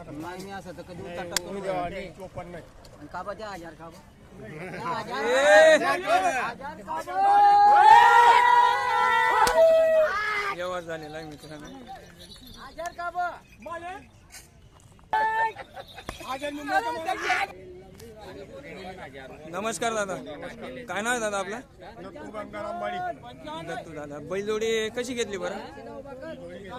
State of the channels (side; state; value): both; identical; correlation 1.00